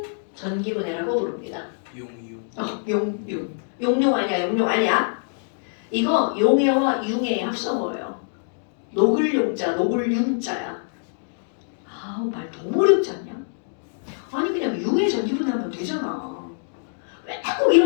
전기분해라고 부릅니다. 용용 아니야. 이거 용해와 융해의 합성어예요. 녹을 용자, 녹을 융자야. 말 너무 어렵지 않냐? 아니 그냥 융해 전기분해하면 되잖아. 왜 자꾸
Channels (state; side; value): silent; right; 62 dB below the other